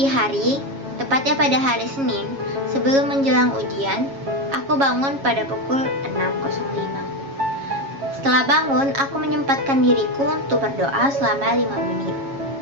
hari, tepatnya pada hari Senin, sebelum menjelang ujian, aku bangun pada pukul 6.05. Setelah bangun, aku menyempatkan diriku untuk berdoa selama 5 menit.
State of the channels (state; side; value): late; left; 7.3 ms